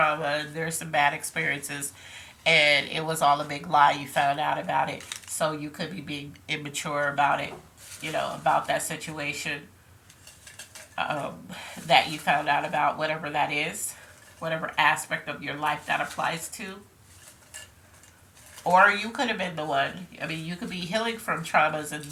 there's some bad experiences, and it was all a big lie. You found out about it. So you could be being immature about it, about that situation um, that you found out about, whatever that is, whatever aspect of your life that applies to. Or you could have been the one. I mean, you could be healing from traumas, and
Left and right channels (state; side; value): identical; both; correlation 1.00